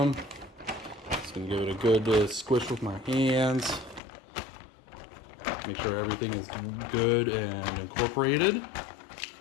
Just gonna give it a good squish with my hands. Make sure everything is good and incorporated.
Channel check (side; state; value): right; drops out; at 4.0 s